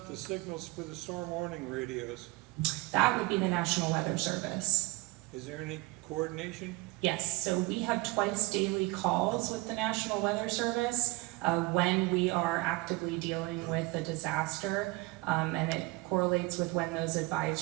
the signals for the storm warning radios? That would be the National Weather Service. Is there any coordination? Yes, so we have twice daily calls with the National Weather Service when we are actively dealing with a disaster, and it correlates with when those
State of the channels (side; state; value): left; quieter; 22.7 dB